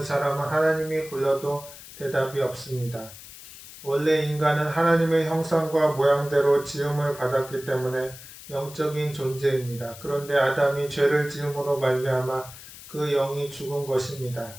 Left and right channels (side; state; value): left; noise; hiss, 16 dB below the sound